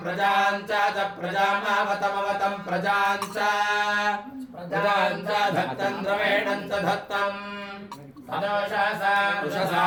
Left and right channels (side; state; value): both; identical; correlation 1.00